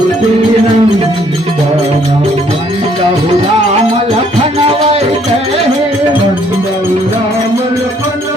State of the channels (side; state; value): both; normal; correlation 0.65